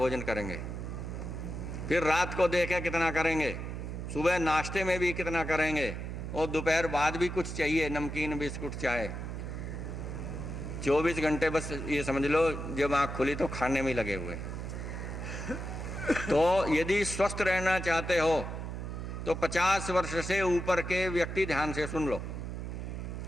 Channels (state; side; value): noise; right; hum, 6 dB below the sound